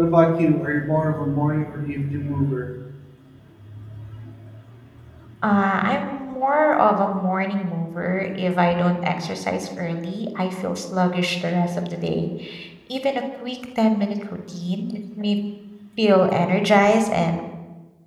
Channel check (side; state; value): both; identical; correlation 1.00